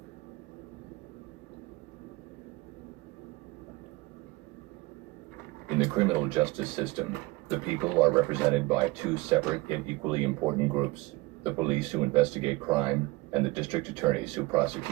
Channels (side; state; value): left; quieter; 21.8 dB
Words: In the criminal justice system, the people are represented by two separate yet equally important groups: the police who investigate crime and the district attorneys who